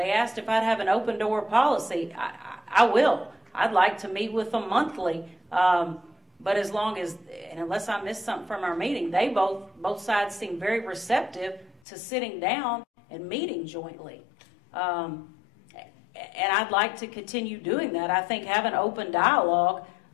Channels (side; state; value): right; drops out; at 11.8 s